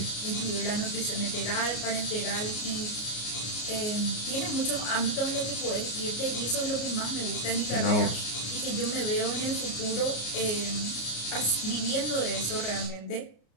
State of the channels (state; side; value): late; right; 33 ms